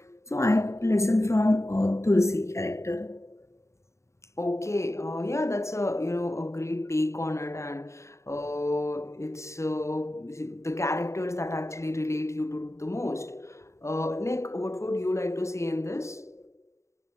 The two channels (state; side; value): late; right; 0.14 ms